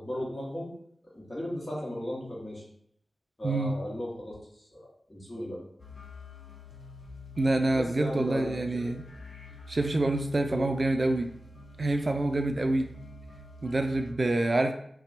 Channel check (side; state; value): both; normal; correlation 0.93